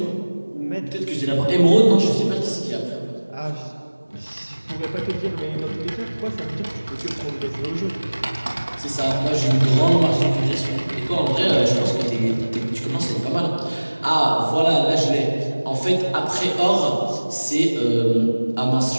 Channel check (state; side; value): inverted; both; correlation -1.00